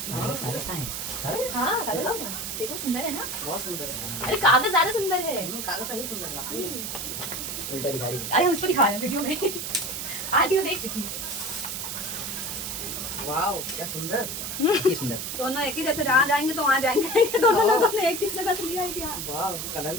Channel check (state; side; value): noise; right; hiss, 5 dB below the sound